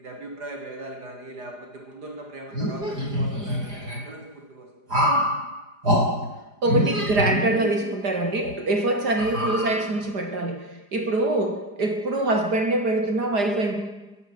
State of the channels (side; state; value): left; late; 4.9 ms